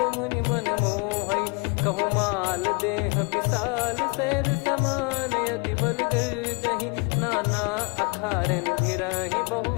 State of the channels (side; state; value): right; quieter; 31.8 dB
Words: मुनि मन मोहई। भई। कहूँ माल देह विशाल सैद समान अति बल गर्जहि। नाना अखारन भिरहि